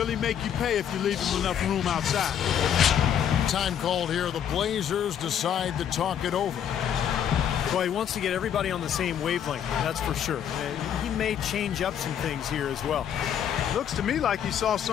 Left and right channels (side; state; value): right; quieter; 9.1 dB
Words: make you pay if you leave him enough room outside. Time called here. The Blazers decide to talk it over. Well, he wants to get everybody on the same wavelength, that's for sure. He may change up some things here as well. Looks to me like he saw